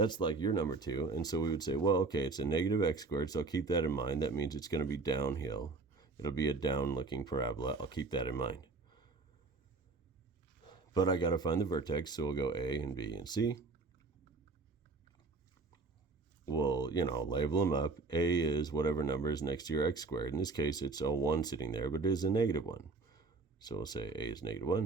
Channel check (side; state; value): left; quieter; 3.7 dB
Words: like your number 2. And so we would say, well, okay, it's a -x squared, so I'll keep that in mind. That means it's going to be downhill. It'll be a down-looking parabola. I'll keep that in mind. But I got to find the vertex, so we'll go A and B and C. We'll, label them up. A is whatever number is next to your x squared. In this case, it's a 1 sitting there, but it is a -1. So we'll say A is